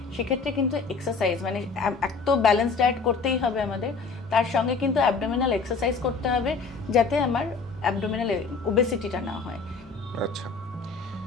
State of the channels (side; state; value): right; quieter; 4.7 dB